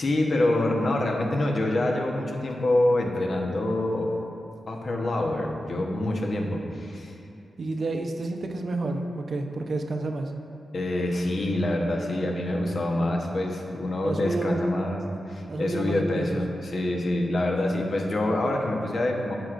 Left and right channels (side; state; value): both; normal; correlation 0.91